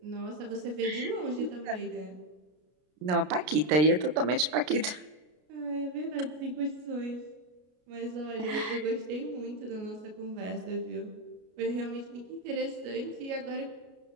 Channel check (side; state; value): left; late; 33 ms